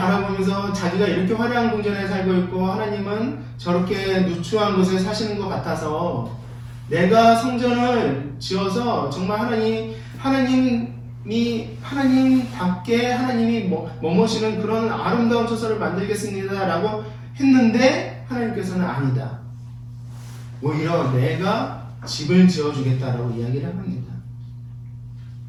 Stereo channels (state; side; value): identical; both; correlation 1.00